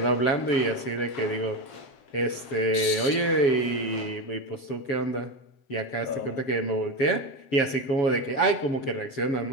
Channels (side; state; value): right; late; 7.1 ms